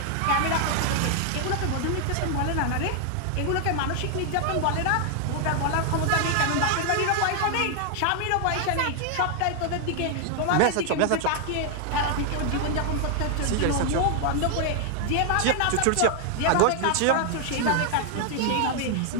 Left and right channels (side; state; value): both; different; correlation 0.00